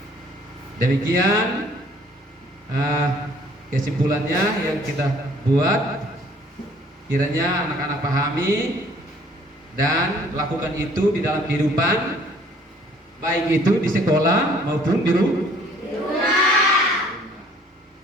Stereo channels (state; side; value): normal; both; correlation 0.57